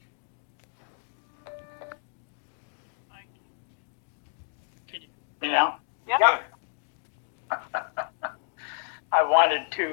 You know? Yeah. I wanted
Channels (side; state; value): right; silent; 58 dB below the other